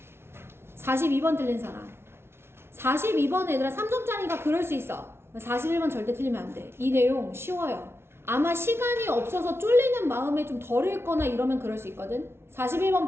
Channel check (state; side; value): late; left; 0.12 ms